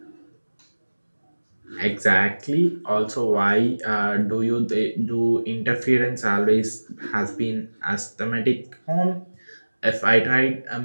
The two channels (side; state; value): both; inverted; correlation -1.00